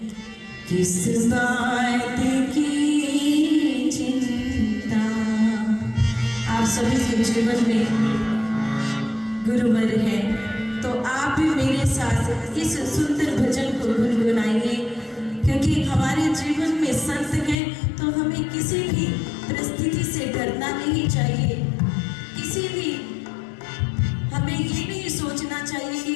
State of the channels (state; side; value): drops out; right; at 17.6 s